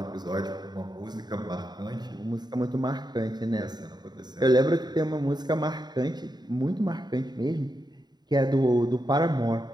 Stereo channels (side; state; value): left; late; 0.20 ms